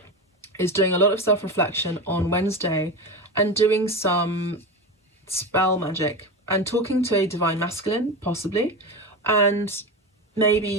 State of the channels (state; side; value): normal; both; correlation 0.22